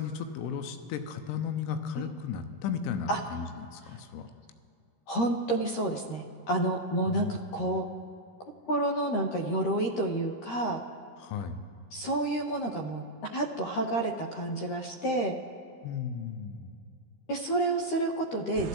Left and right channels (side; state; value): right; late; 13 ms